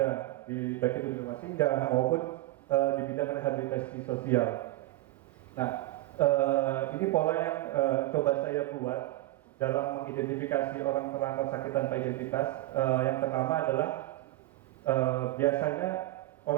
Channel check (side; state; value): left; quieter; 17.3 dB